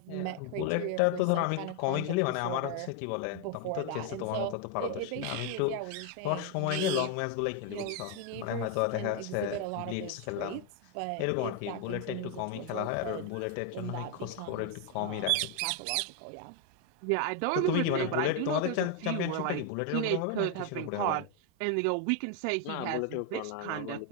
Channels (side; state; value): both; different; correlation 0.01